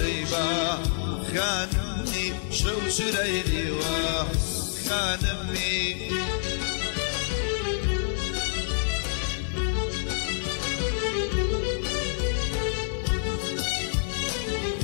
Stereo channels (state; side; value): silent; right; digital silence